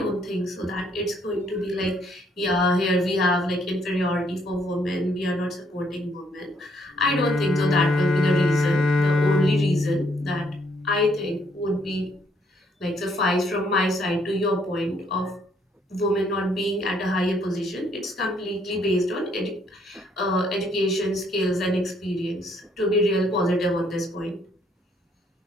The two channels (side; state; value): both; normal; correlation 0.69